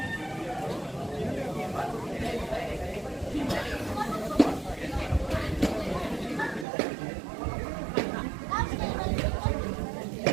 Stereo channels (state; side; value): drops out; left; at 6.7 s